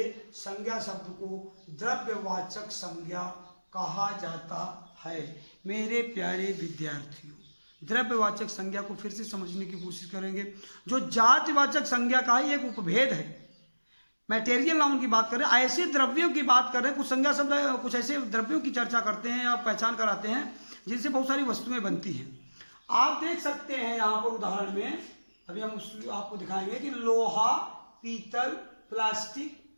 संज्ञा शब्द को द्रव्यवाचक संज्ञा कहा जाता है। मेरे प्यारे विद्यार्थियों, द्रव्यवाचक संज्ञा को फिर से समझने की कोशिश करेंगे। जो जातिवाचक संज्ञा का ही एक उपभेद है, मैटेरियल नाउन की बात करें, ऐसे द्रव्यों की बात करें, कुछ संज्ञा शब्द कुछ ऐसे द्रव्यों की चर्चा करते हैं या पहचान कराते हैं जिनसे बहुत सारी वस्तुएं बनती हैं। आप देख सकते हैं यहाँ पर उदाहरण में, अभी हम आपको दिखाएंगे कि लोहा, पीतल, प्लास्टिक,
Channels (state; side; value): inverted; both; correlation -1.00